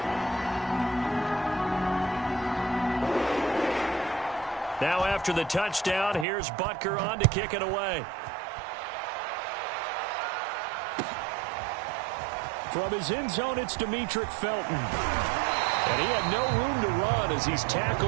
Now after the touchdown, here's Butker on to kick it away. From his end zone, it's Demetric Felton. And he had no room to run as he's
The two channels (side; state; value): left; drops out; at 6.2 s